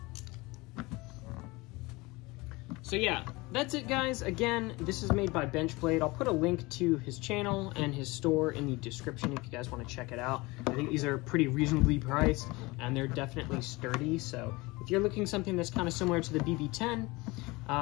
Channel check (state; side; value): quieter; right; 23.2 dB